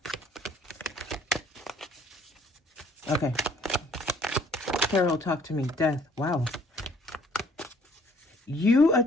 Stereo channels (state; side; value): normal; both; correlation 0.60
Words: Okay. Carol, talk to me. Death. Wow. You